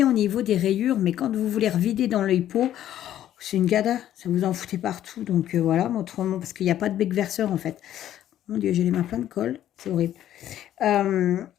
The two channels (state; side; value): quieter; right; 11.8 dB